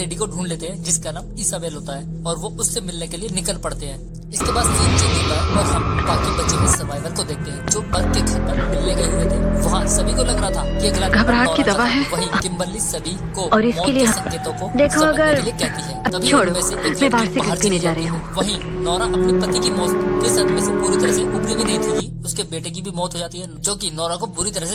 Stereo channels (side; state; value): both; identical; correlation 1.00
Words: को ढूंढ लेते हैं जिसका नाम इसाबेल होता है और वो उससे मिलने के लिए निकल पड़ते हैं। इसके बाद सीन चेंज होता है और हम बाकी बचे हुए सर्वाइवर को देखते हैं जो पर्क के घर पर मिलने गए हुए थे। वहाँ सभी को लग रहा था कि अगला घबराहट की दवा है। वही किम्बरली सभी को और इसके लिए संकेतों को देखो अगर कहती है। अब छोड़ो, मैं बाहर से पीने जा रही हूँ। वहीं नोरा अपने पति की मौत के सदमे से पूरी तरह से उभरी भी नहीं थी। उसके बेटे की भी मौत हो जाती है जो कि नोरा को बुरी तरह